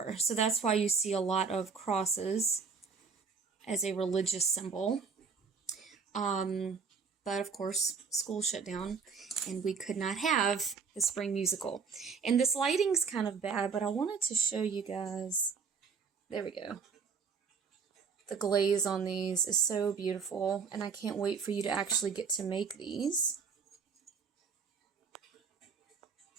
So that's why you see a lot of crosses as a religious symbol. But of course, school shut down and we could not have the spring musical. And this lighting's kind of bad, but I wanted to show you guys. There we go. The glaze on these is so beautiful, and I can't wait for you to actually get to make these.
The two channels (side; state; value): left; quieter; 5.6 dB